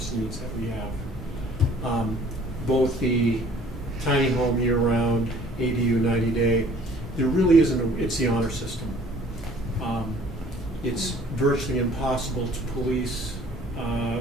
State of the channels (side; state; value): both; normal; correlation 0.54